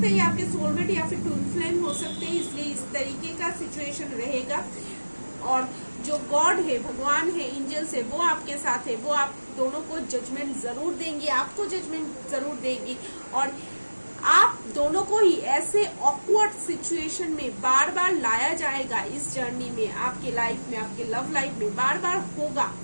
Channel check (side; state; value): both; inverted; correlation -1.00